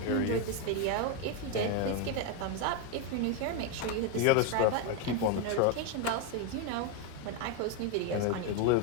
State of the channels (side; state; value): both; different; correlation 0.02